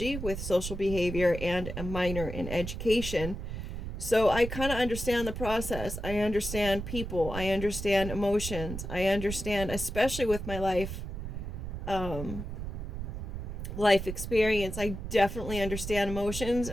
with social behavior and a minor in education. So I kind of understand the process. I understand people. I understand emotions. I understand, especially with my life experience, I definitely understand emotions,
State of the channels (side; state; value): right; noise; rumble, 6 dB below the sound